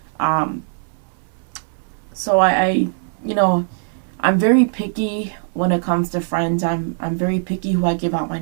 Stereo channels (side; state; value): left; silent; 60 dB below the other